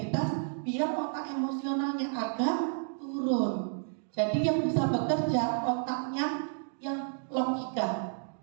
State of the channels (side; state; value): left; silent; digital silence